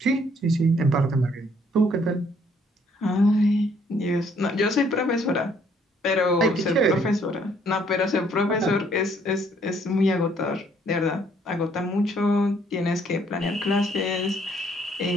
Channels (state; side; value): normal; both; correlation 0.65